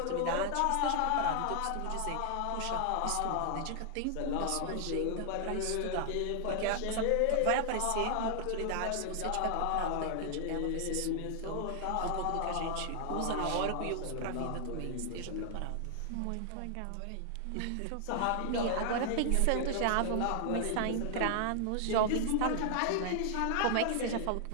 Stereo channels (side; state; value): both; different; correlation 0.00